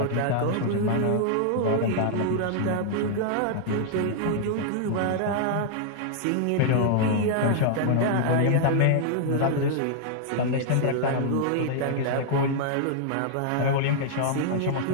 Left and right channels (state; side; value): different; both; correlation -0.01